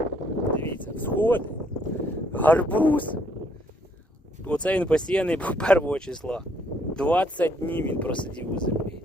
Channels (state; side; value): normal; both; correlation 0.68